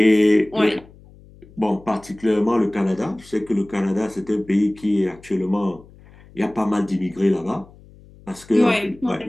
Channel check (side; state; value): left; noise; hum, 24 dB below the sound